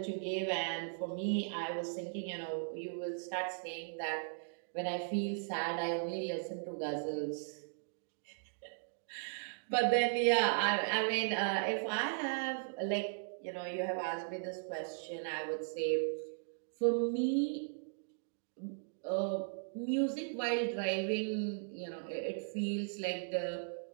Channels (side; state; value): left; silent; digital silence